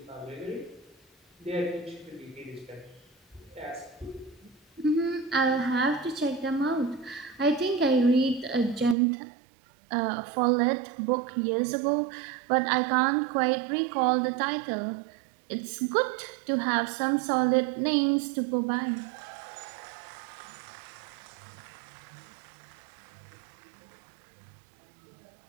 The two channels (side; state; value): left; drops out; at 9.0 s